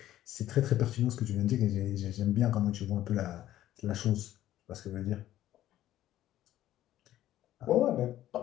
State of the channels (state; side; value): quieter; right; 13.3 dB